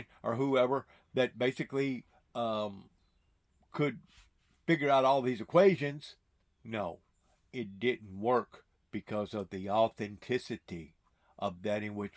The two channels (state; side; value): identical; both; correlation 1.00